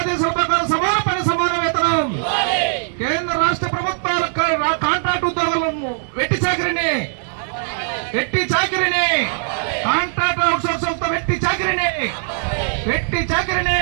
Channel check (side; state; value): left; silent; digital silence